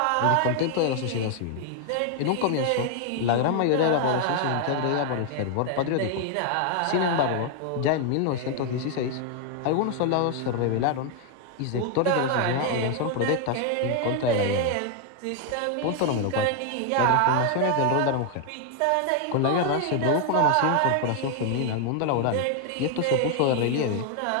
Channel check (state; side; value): different; both; correlation 0.00